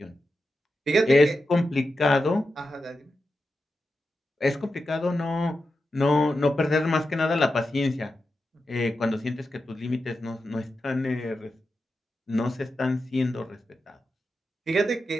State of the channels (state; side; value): normal; both; correlation 0.90